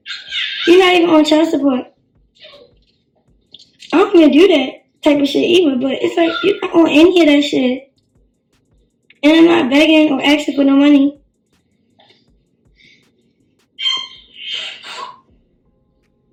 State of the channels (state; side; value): identical; both; correlation 1.00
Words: You're not even on child support. I don't even do that type of shit either, but it's like you're not on any of that shit. And I'm not begging or asking for no money.